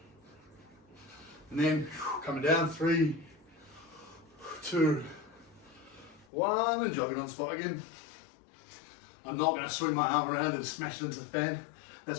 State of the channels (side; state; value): right; drops out; at 6.2 s